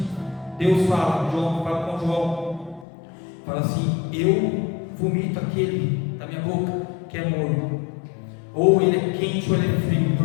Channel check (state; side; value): drops out; right; at 2.9 s